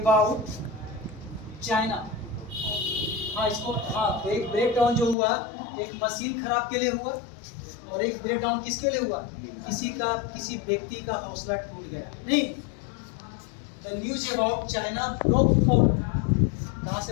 चाइना। हाँ इसको, हाँ तो एक ब्रेक डाउन जो हुआ, एक मशीन खराब के लिए हुआ, और एक ब्रेक डाउन किसके लिए हुआ, किसी व्यक्ति का हौसला टूट गया। नहीं, the news about China broke fourth, कहाँ से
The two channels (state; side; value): drops out; right; at 5.2 s